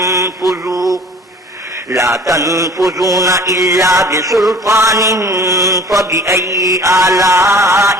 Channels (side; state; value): both; normal; correlation 0.47